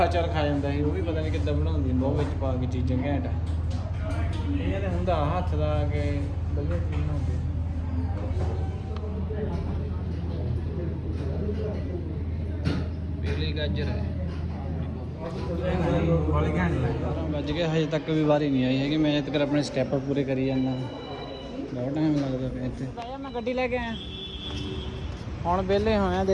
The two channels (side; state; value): both; identical; correlation 1.00